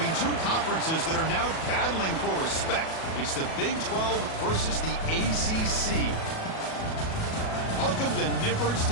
two conferences that are now battling for respect. It's the Big 12 versus the ACC. Welcome to Nippert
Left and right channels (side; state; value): right; late; 37 ms